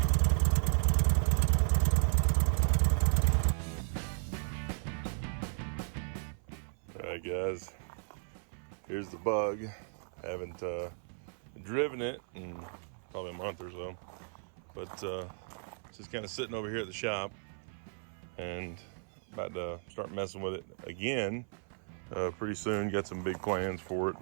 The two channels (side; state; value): left; silent; 55 dB below the other